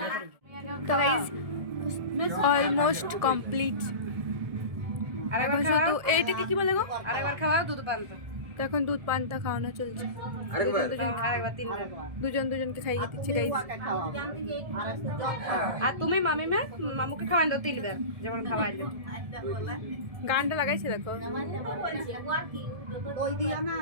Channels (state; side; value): late; left; 1.7 ms